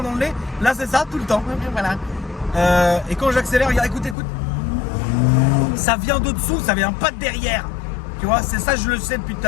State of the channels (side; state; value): right; drops out; at 4.2 s